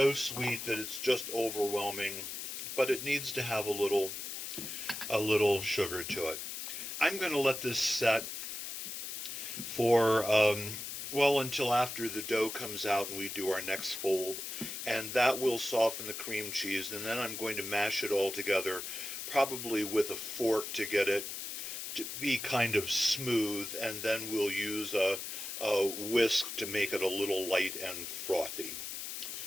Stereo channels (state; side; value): noise; left; hiss, 6 dB below the sound